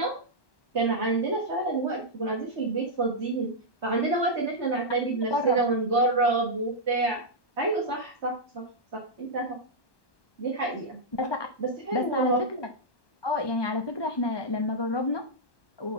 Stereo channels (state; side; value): late; right; 1.1 ms